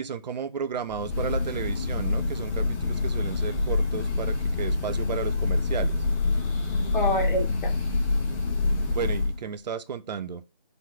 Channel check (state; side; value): inverted; both; correlation -0.69